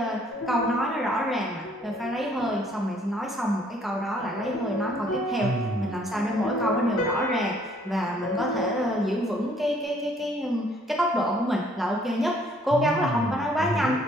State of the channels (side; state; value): both; normal; correlation 0.62